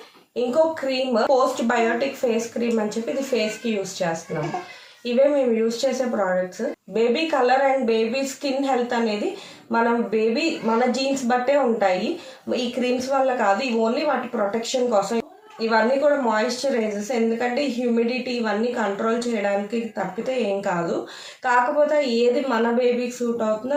ఇంకో cream postbiotic face cream అని చెప్పి ఇది ఫేస్కి యూస్ చేస్తున్నాము. ఇవే మేము యూస్ చేసే products. Baby colour and baby skin health అనేది మన జీన్స్ బట్టే ఉంటాయి. ఈ క్రీమ్స్ వల్ల కాదు, ఇవి ఓన్లీ వాటి ప్రొటెక్షన్ కోసం. ఇవన్నీ కూడా మాయిశ్చరైజర్స్, ఎందుకంటే హ్యూమిడిటీ ఇవన్నీ కంట్రోల్ చేయడానికి తప్పితే ఏం కాదు. కాకపోతే ఏది మన బేబీకి సూట్ అవుతుందో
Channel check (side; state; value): both; identical; correlation 1.00